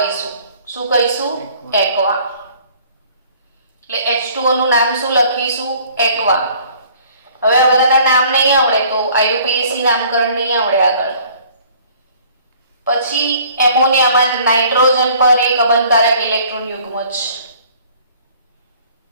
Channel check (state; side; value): inverted; both; correlation -0.54